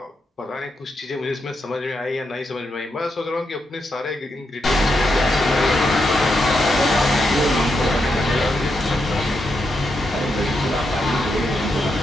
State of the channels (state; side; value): normal; both; correlation 0.83